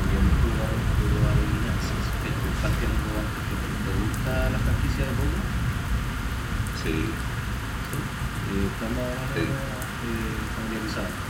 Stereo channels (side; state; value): both; identical; correlation 1.00